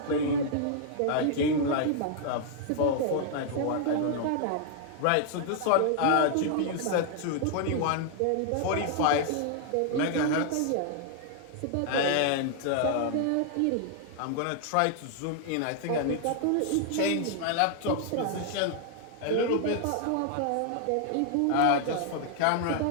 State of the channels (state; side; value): different; both; correlation 0.00